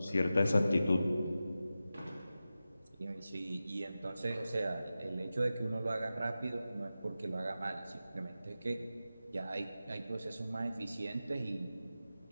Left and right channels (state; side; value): inverted; both; correlation -0.93